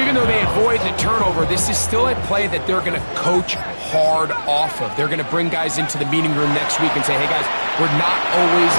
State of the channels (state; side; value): inverted; both; correlation -1.00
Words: though they avoid the turnover, this is still a play that they're going to coach hard off of. They're going to bring guys into the meeting room next week and say, hey, guys, we're not always